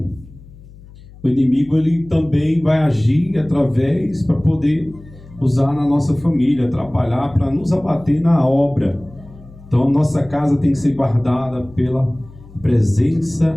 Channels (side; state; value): left; noise; hum, 21 dB below the sound